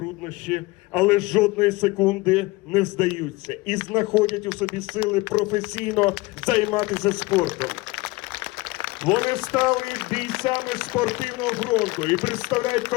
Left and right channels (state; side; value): quieter; right; 22.4 dB